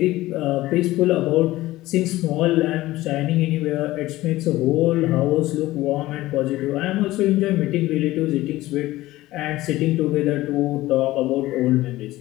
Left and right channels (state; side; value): quieter; right; 17.1 dB